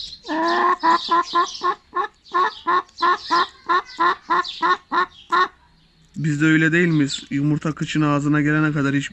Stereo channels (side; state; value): both; identical; correlation 1.00